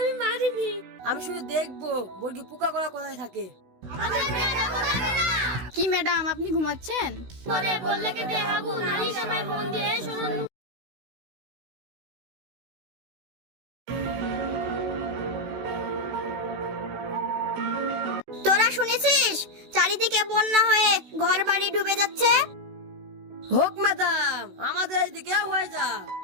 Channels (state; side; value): late; left; 16 ms